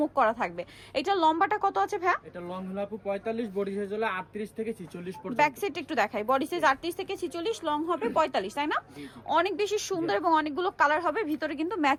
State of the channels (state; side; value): identical; both; correlation 1.00